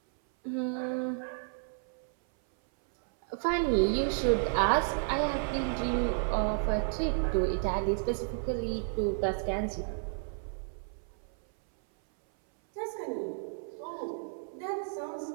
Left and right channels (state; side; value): silent; left; 57 dB below the other